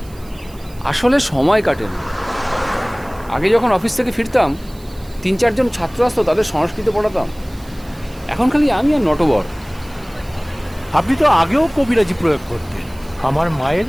আসলে সময় কাটে না। আগে যখন অফিস থেকে ফিরতাম 3-4 জন ছাত্র আসতো, তাদের সংস্কৃত পড়াতাম। এখন খালি আমি আর নটবর। আপনি তো আগেও কবিরাজি প্রয়োগ করতেন। আমার মায়ের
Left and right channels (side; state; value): right; noise; hiss, 24 dB below the sound